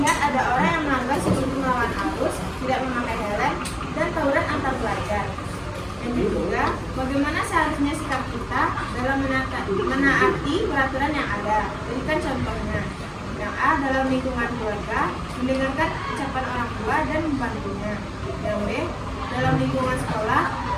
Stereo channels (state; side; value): identical; both; correlation 1.00